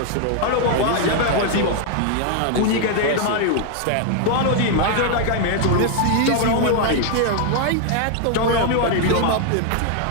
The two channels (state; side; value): different; both; correlation 0.00